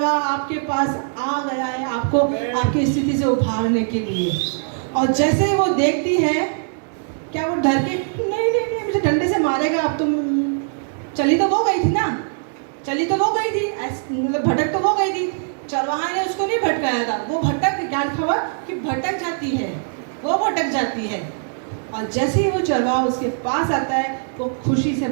आपके पास आ गया है, आपको आपकी स्थिति से उभारने के लिए। और जैसे ही वो देखती है, क्या वो डर के नहीं नहीं नहीं मुझे डंडे से मारेगा, अब तुम चली तो वो गई थी ना, चली तो वो गई थी, मतलब भटक तो वो गई थी, चरवाहा ने उसको नहीं भटकाया था, वो भटक, ज्ञान खबर कि भटक जाती है, वो भटक जाती है। और जैसे ही वो चरवाहा उसके पास आता है वो खुशी से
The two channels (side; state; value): left; silent; digital silence